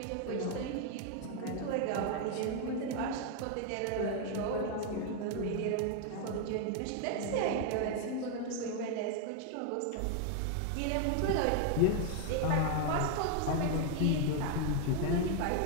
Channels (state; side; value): different; both; correlation 0.01